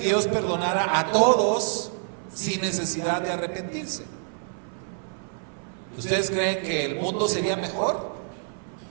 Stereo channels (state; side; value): silent; left; 56 dB below the other